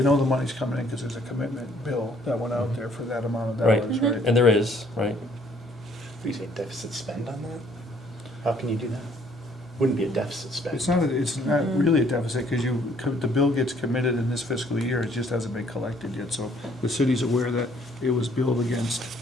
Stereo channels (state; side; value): normal; both; correlation 0.63